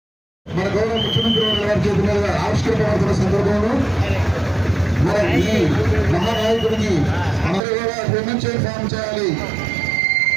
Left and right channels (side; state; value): left; drops out; at 7.6 s